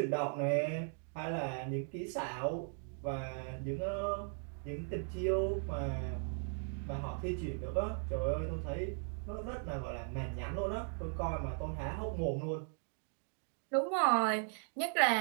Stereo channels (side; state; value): left; silent; 53 dB below the other